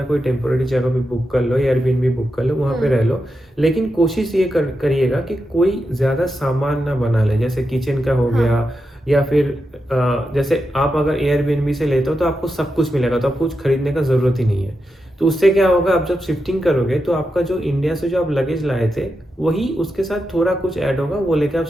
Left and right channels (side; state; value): both; normal; correlation 0.88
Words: कोई टेम्पोरेरी जगह भी बुक कर लो, एयरबीएनबी बुक कर लो, वहाँ पे रह लो। लेकिन कोशिश ये करिएगा कि कोई ज़्यादा सामान ना बना ले, जैसे किचन का हो हाँ, गया, या फिर जैसे आप अगर एयरबीएनबी से लेते हो तो आपको सब कुछ मिलेगा, तो आपको कुछ खरीदने का ज़रूरत ही नहीं है। तो उससे क्या होगा, आप जब शिफ्टिंग करोगे तो आपका जो इंडिया से जो आप लगेज लाए थे, वही उसके साथ थोड़ा कुछ ऐड होगा, वो लेके आप